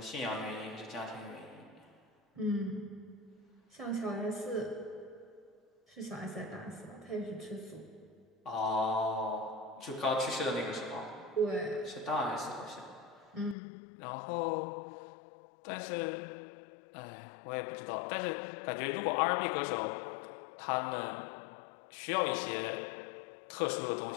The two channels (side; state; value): right; drops out; at 13.6 s